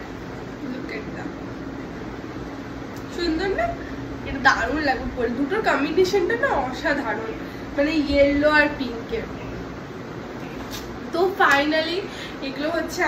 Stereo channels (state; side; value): identical; both; correlation 1.00